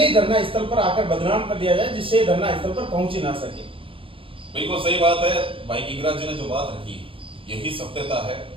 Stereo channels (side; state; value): left; late; 0.26 ms